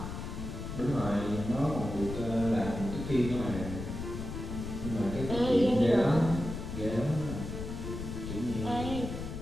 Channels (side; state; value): left; noise; rumble, 7 dB below the sound